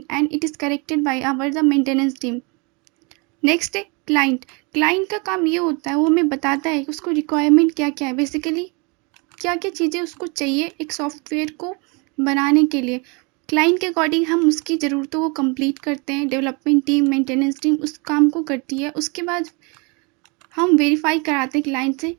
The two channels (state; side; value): quieter; left; 30.9 dB